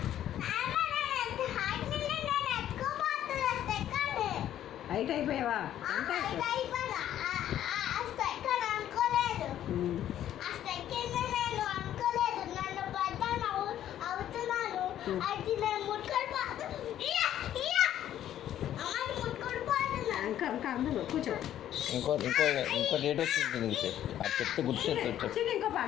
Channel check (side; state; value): right; quieter; 11.5 dB